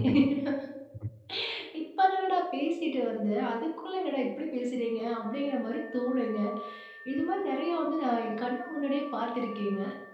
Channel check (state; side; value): identical; both; correlation 1.00